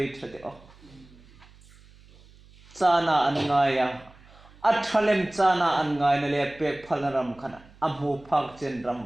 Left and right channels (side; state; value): right; noise; hum, 25 dB below the sound